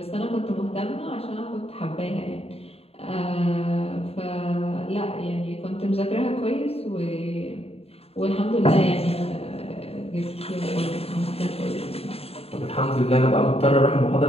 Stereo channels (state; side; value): late; right; 0.29 ms